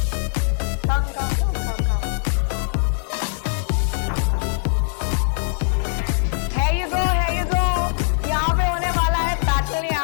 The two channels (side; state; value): right; silent; 56 dB below the other